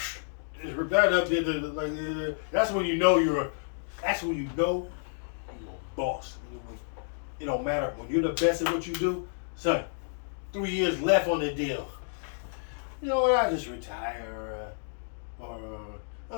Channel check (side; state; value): right; silent; digital silence